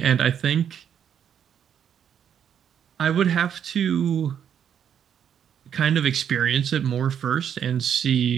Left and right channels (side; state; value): left; quieter; 8.7 dB